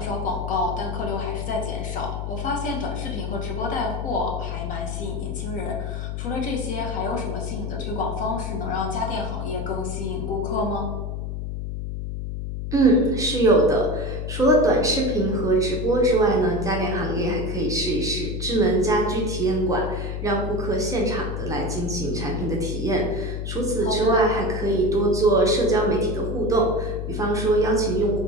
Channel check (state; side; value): noise; left; hum, 4 dB below the sound